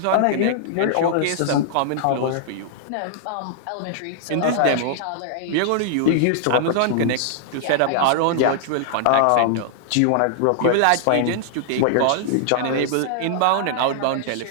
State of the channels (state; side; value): different; both; correlation -0.01